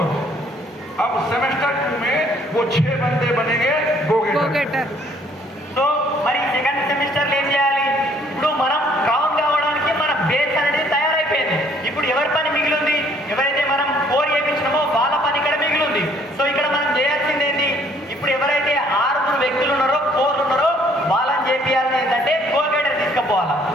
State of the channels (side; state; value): both; normal; correlation 0.62